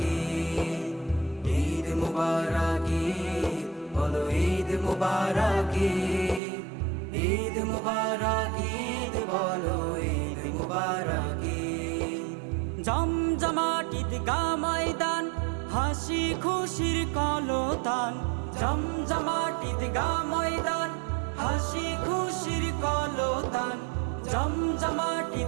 ঈদ মুবারক ঈদ, বলো ঈদ মুবারক ঈদ মুবারক ঈদ, বলো ঈদ মুবারক জমজমাট ঈদগাহ ময়দান, হাসি খুশির কলতান। জমজমাট ঈদগাহ ময়দান, হাসি খুশির কলতান। জমজমাট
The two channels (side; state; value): left; drops out; at 6.4 s